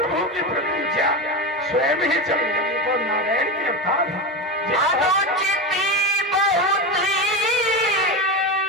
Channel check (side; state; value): both; normal; correlation 0.19